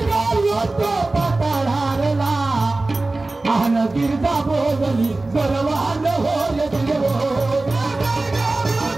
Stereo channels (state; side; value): quieter; left; 3.1 dB